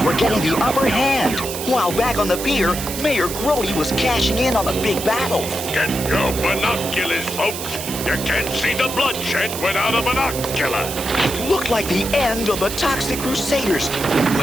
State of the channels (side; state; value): right; noise; hiss, 7 dB below the sound